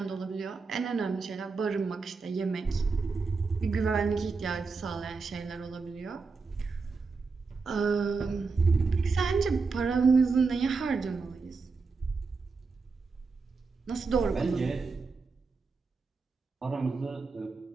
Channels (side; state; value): left; quieter; 4.5 dB